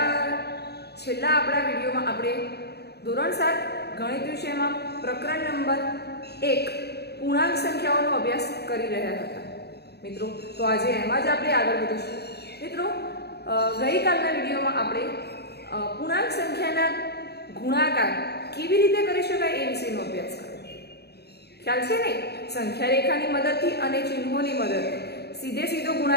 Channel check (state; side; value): late; right; 0.48 ms